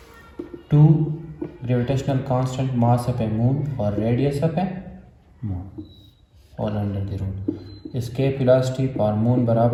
2 gravitational constant mass of a moon और रेडियस ऑफ ए मून और under the root. Escape velocity for moon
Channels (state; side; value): identical; both; correlation 1.00